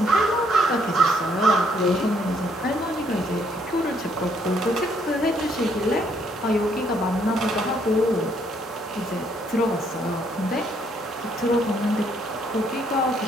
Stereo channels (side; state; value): both; normal; correlation 0.69